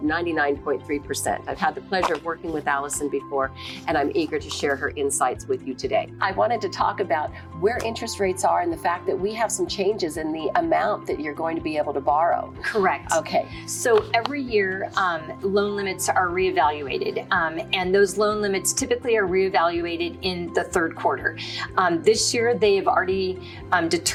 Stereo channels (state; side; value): identical; both; correlation 1.00